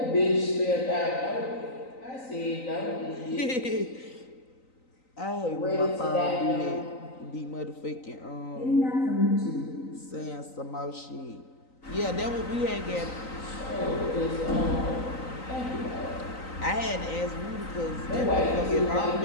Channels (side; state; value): right; late; 3.9 ms